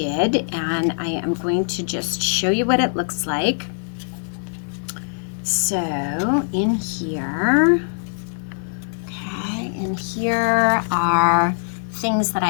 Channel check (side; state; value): right; silent; digital silence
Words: and I am going to just show you what it looks like. So in here, here are things that